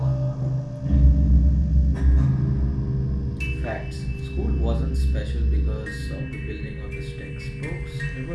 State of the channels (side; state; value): both; identical; correlation 1.00